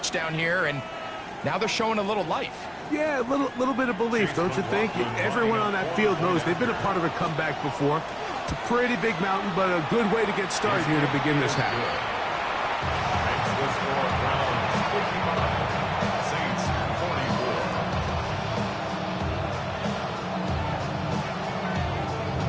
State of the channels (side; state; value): both; identical; correlation 1.00